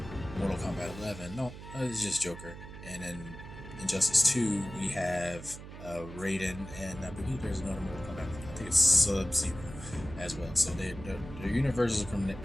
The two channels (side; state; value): right; noise; hum, 13 dB below the sound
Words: Mortal Kombat 11. No, it's just Joker. And in Injustice 2, we have Raiden, and I believe there's another Mortal Kombat. I think it's Sub-Zero as well. So their universes